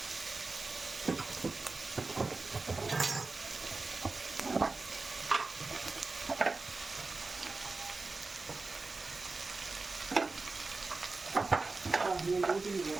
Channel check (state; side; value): quieter; left; 3.7 dB